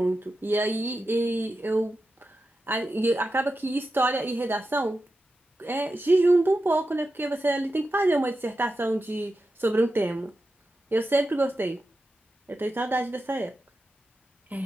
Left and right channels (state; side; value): normal; both; correlation 0.90